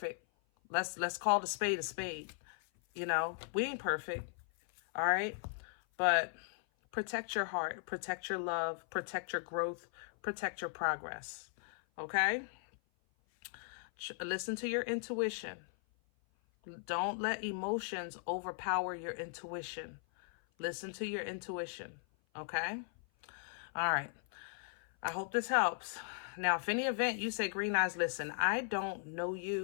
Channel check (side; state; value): right; silent; 53 dB below the other